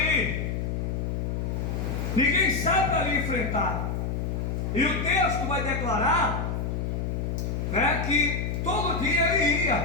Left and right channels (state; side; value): noise; left; hum, 1 dB below the sound